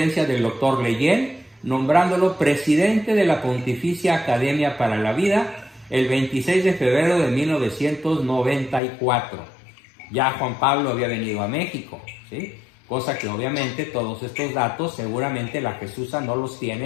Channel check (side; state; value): right; drops out; at 8.8 s